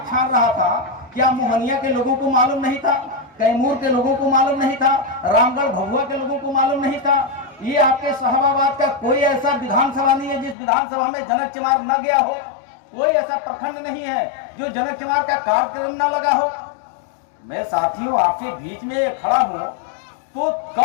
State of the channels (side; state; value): right; drops out; at 10.6 s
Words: छान रहा था, क्या मोहनिया के लोगों को मालूम नहीं था? कैमूर के लोगों को मालूम नहीं था? रामगढ़ भभुआ के लोगों को मालूम नहीं था? ये आपके शाहबाद का कोई ऐसा विधानसभा नहीं है जिस विधानसभा में जनक चमार न गया हो। कोई ऐसा प्रखंड नहीं है जो जनक चमार का कार्यक्रम न लगा हो। मैं साथियों आपके बीच में खड़ा हूं तो